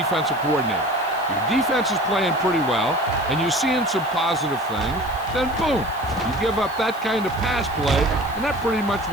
coordinator. Your defense is playing pretty well, and you're seeing some positive things, then boom, you give up that kind of pass play, and that pretty much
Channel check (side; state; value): right; noise; hiss, 21 dB below the sound